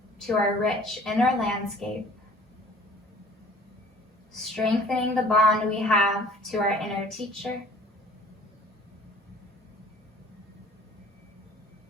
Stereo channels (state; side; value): normal; both; correlation 0.50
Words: to our rich inner landscape, strengthening the bond we have to our inner teacher.